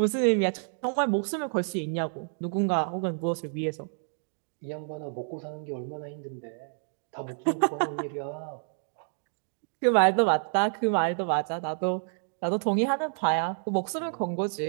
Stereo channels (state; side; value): silent; left; digital silence